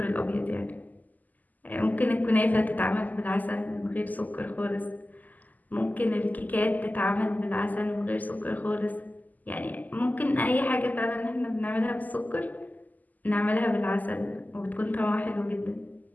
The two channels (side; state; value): right; late; 0.081 ms